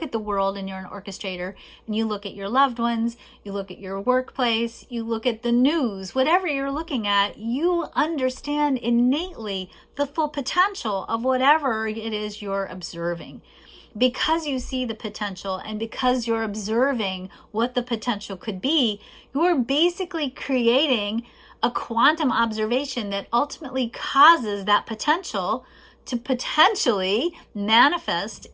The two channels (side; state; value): both; identical; correlation 1.00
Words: at the world and you're an orchestrator and you look at your loved ones, you look at your workplace, you look at the news, whatever you're looking at, you understand innately the full potential of whatever it is you're observing. Because you see the potential and because you're observing what the potential could be, you're basically creating a quantum observation that ultimately causes that potential to potentially manifest